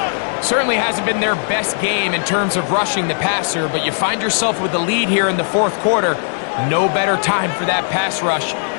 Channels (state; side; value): silent; right; digital silence